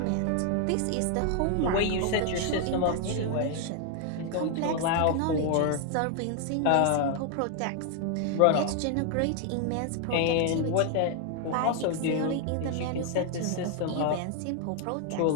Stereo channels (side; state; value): both; different; correlation 0.00